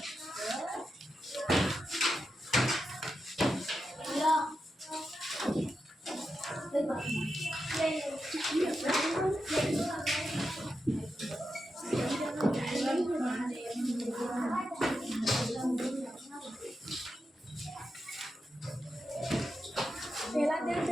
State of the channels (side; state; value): both; normal; correlation 0.88